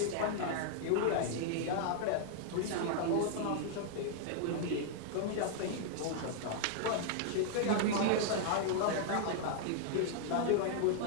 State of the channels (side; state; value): both; different; correlation -0.01